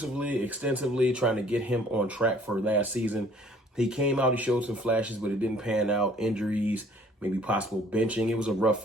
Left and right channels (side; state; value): both; normal; correlation 0.57